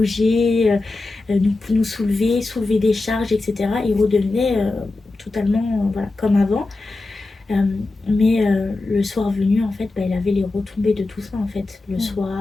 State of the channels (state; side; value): quieter; right; 3.2 dB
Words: nous soulever des charges, etc. Il redevenait totalement voilà, comme avant. Mais le soir venu, en fait, il avait les retombées de tout ça, en fait. Le